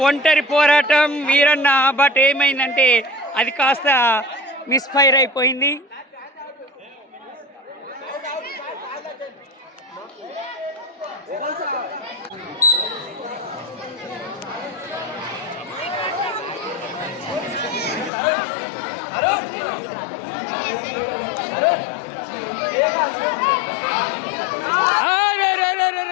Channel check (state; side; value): drops out; right; at 18.1 s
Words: ఒంటరి పోరాటం వీరన్న, బట్ ఏమైందంటే అది కాస్త మిస్ఫైర్ అయిపోయింది.